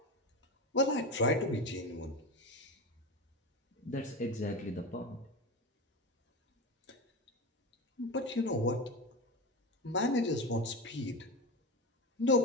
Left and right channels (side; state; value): both; normal; correlation 0.22